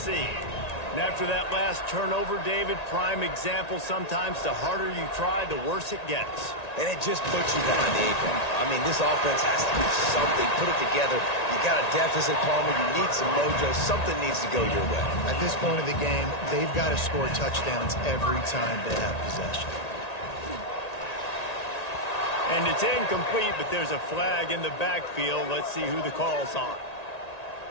And after that last turnover, David, prime example, sometimes the harder you try, the worse it gets. And it just puts you behind the 8 ball. I mean, this offense has to do something, put it together. You got a deficit, Palmer. You need some mojo. Something needs to go your way. At this point of the game, they've got to score touchdowns every time they have possession. And it's incomplete, but there's a flag in the backfield. Let's see who the call's on.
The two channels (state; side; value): late; right; 1.9 ms